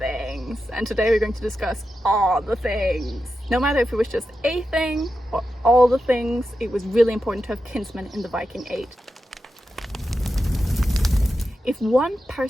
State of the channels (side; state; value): both; normal; correlation 0.90